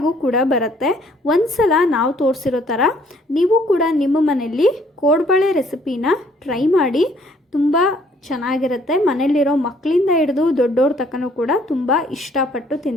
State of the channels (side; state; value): both; normal; correlation 0.62